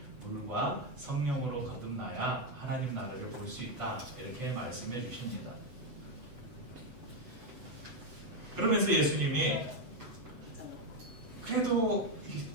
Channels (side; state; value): left; late; 8.0 ms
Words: 물과 성령으로 거듭나야 하나님 나라를 볼 수 있다. 이렇게 말씀해 주십니다. 그러면서 예수님이 그래도